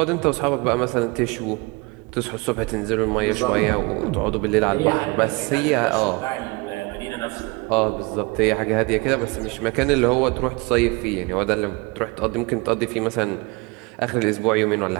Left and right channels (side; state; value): left; quieter; 26.3 dB